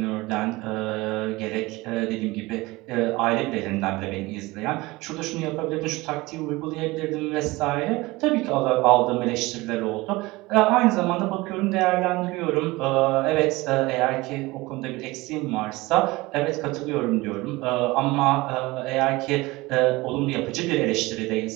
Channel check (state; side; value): quieter; left; 21.4 dB